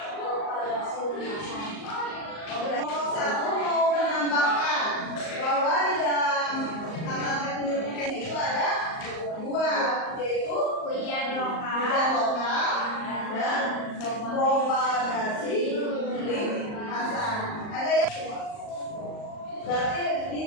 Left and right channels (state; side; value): late; right; 38 ms